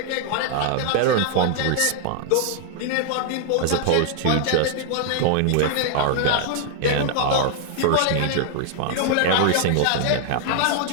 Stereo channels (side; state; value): both; different; correlation 0.00